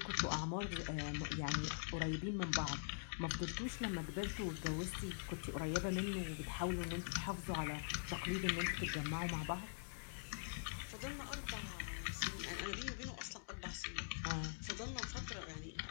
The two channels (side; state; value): right; silent; digital silence